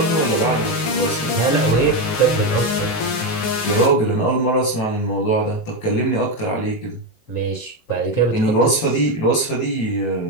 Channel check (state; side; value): late; right; 19 ms